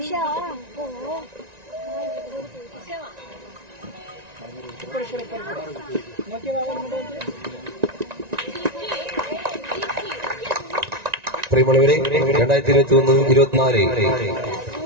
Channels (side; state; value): left; late; 1.9 ms